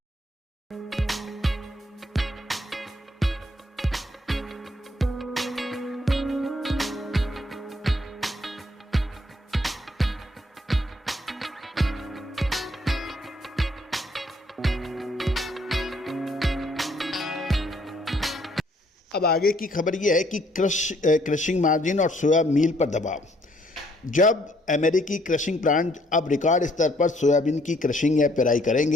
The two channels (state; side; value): normal; both; correlation 0.66